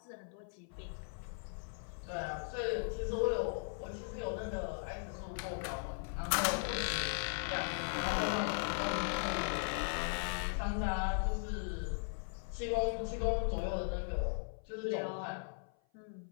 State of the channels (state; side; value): silent; right; 52 dB below the other